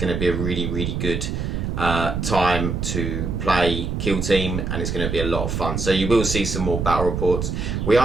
to be a really good time to play Kill Team, and it's going to be a lot of fun. So you will see some more battle reports. We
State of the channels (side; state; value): right; noise; rumble, 2 dB below the sound